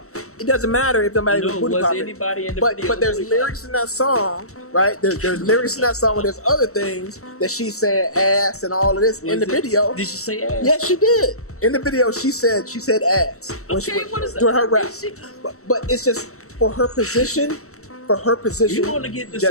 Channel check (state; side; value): late; right; 0.64 ms